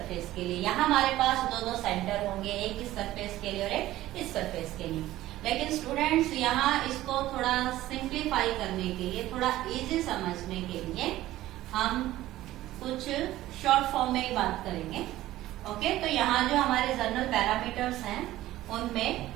के लिए। यहाँ हमारे पास दो दो सेंटर होंगे, एक इस सरफेस के लिए और एक इस सरफेस के लिए। लेकिन स्टूडेंट्स यहाँ इसको थोड़ा सिंप्लीफाई करने के लिए, थोड़ा इजी समझने के लिए हम कुछ शॉर्ट फॉर्म में ही बात करेंगे। ओके, तो यहाँ जो हमारे जनरल पैरामीटर्स हैं उनमें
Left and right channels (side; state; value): left; quieter; 15.4 dB